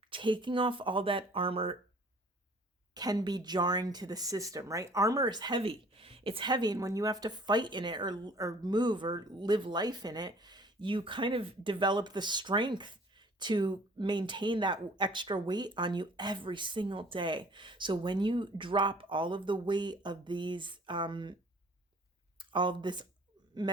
Taking off all that armor can be jarring to the system, right? Armor is heavy. It's heavy, and when you have to fight in it or move or live life in it, you kind of develop the strength to maintain that extra weight on you every single day. So when you drop all of the weight of these, all of this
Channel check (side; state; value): both; normal; correlation 0.53